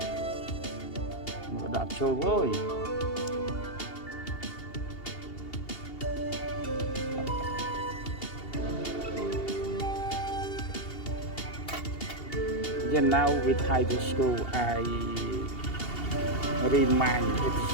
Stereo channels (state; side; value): late; right; 2.8 ms